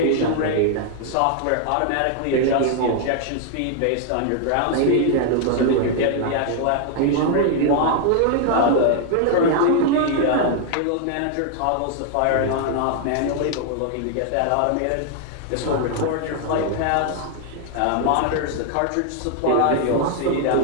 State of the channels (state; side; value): different; both; correlation 0.00